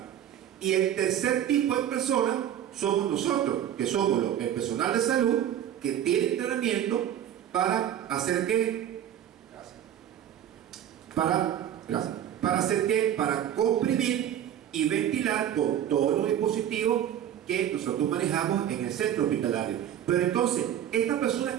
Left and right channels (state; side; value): quieter; left; 10.5 dB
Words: Y el tercer tipo de personas somos nosotros, que somos el personal de salud que tiene entrenamiento para hacer qué, para hacer qué, para comprimir y ventilar con todos los dispositivos que nosotros manejamos en el centro hospitalario. Pero entonces, ¿esta persona